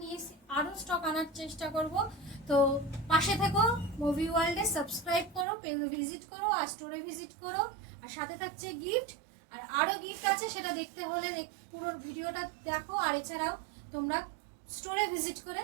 নিয়েছি, আরও স্টক আনার চেষ্টা করব। তো পাশে থেকো, মুভি ওয়ার্ল্ডে সাবস্ক্রাইব করো, পেজ ভিজিট করো আর স্টোরে ভিজিট করো। আর সাথে থাকছে গিফট। আর আরও গিফট আছে, সেটা দেখতে হলে পুরো ভিডিওটা দেখো। আর এছাড়াও তোমরা স্টোরে ভিজিট করে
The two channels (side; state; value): left; drops out; at 5.5 s